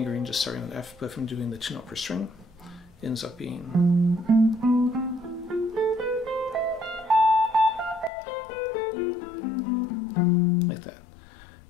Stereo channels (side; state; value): right; drops out; at 8.1 s